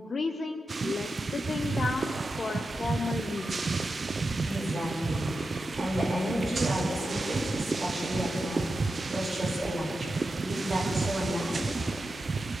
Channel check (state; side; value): normal; both; correlation 0.90